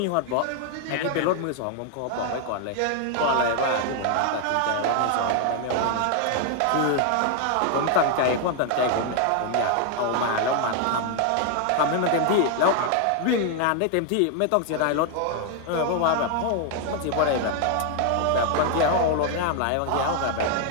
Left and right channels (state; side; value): different; both; correlation 0.00